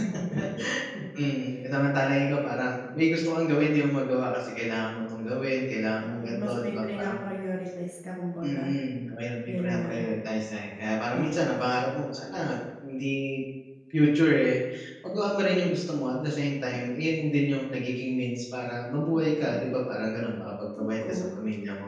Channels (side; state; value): both; identical; correlation 1.00